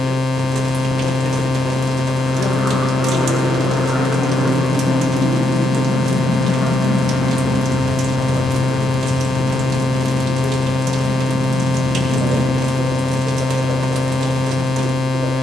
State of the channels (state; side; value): normal; both; correlation 0.79